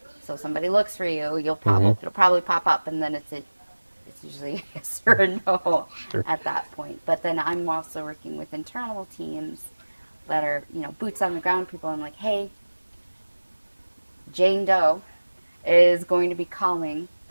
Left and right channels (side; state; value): both; inverted; correlation -1.00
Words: So somebody looks for you, it'll probably pop up, and then it's usually a yes or a no at that point. But then I'm also working with internal teams that are, boots on the ground people. I'm like, hey, Jane Doe is going to be calling.